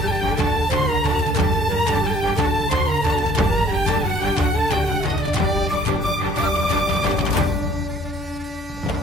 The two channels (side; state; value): both; normal; correlation 0.57